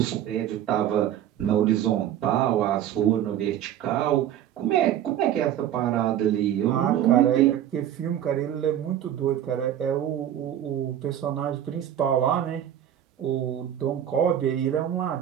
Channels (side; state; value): left; quieter; 11.0 dB